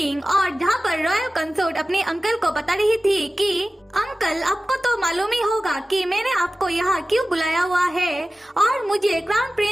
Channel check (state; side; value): normal; both; correlation 0.96